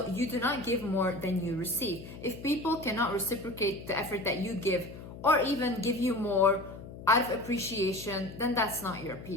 you do not give more than you receive. If people cannot reciprocate the effort that you give or even give you more out of appreciation, then that's not your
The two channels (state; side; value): noise; left; hum, 13 dB below the sound